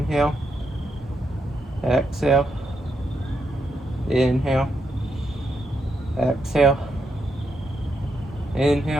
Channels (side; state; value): both; normal; correlation 0.81